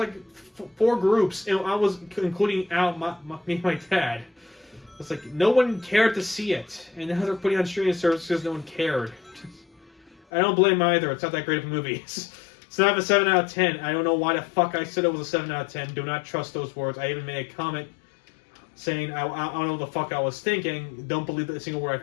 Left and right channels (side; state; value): right; drops out; at 10.2 s